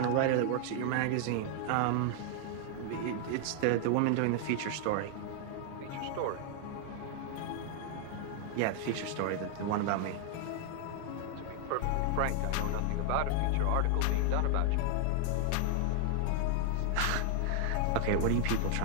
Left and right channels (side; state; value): both; different; correlation 0.00